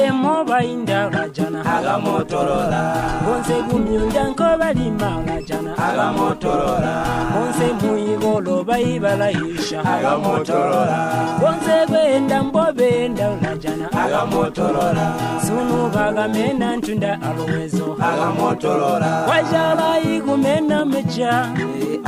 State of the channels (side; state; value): both; identical; correlation 1.00